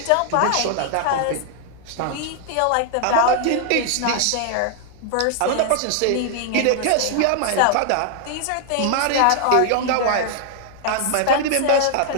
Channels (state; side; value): different; both; correlation 0.00